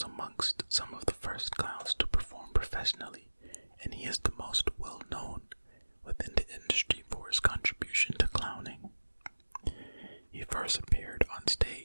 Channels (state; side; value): inverted; both; correlation -1.00